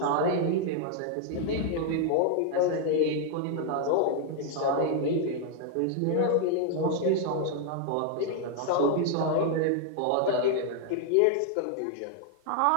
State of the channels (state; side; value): different; both; correlation 0.00